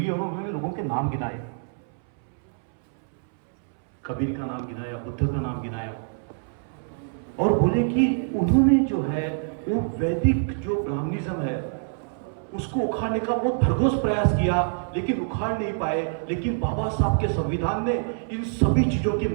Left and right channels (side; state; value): left; silent; 61 dB below the other